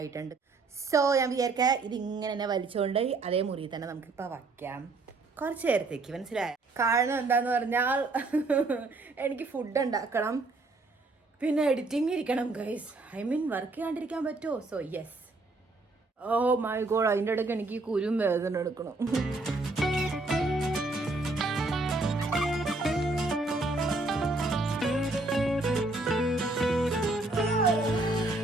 സോ ഞാൻ വിചാരിക്കാം ഇതിങ്ങനെ തന്നെ വലിച്ചുകൊണ്ട് അതേ മുറി തന്നെ നമുക്കിപ്പോൾ വയ്ക്കാം കുറച്ച് നേരത്തേക്ക്. മനസ്സിലായോ? കാരണം എന്താന്ന് പറഞ്ഞാൽ എനിക്ക് ഫുഡ് ഉണ്ടാക്കണം, പിന്നെ എഡിറ്റിംഗ് ഇരിക്കണം ഗൈസ്. ഐ മീൻ വർക്ക് ചെയ്യാണ്ടിരിക്കാൻ പറ്റുമോ? So yes. Oh my god, അതിൻ്റെ ഇടയ്ക്ക് എനിക്ക് കുരും വേദന എടുക്കണം.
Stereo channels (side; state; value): left; quieter; 3.3 dB